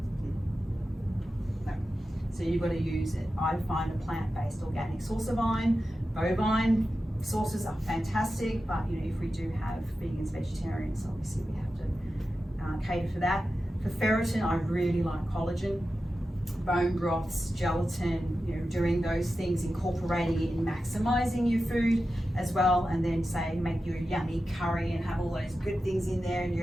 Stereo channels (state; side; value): normal; both; correlation 0.92